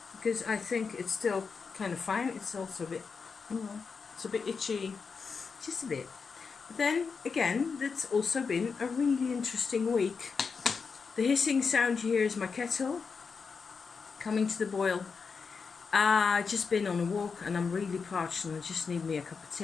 because I think it's still kind of fine. It's also a bit, you know, it's a bit itchy, just a bit. But then again, that's also been a really interesting week. The hissing sound you hear is my kettle coming to the boil. Just been on a walk and I'm really parched and I just need me a cup of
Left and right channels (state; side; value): quieter; right; 5.3 dB